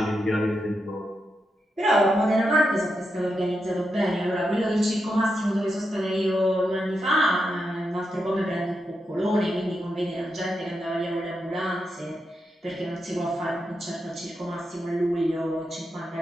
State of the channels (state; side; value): normal; both; correlation 0.86